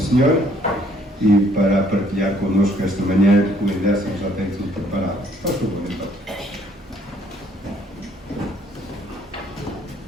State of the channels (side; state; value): both; normal; correlation 0.63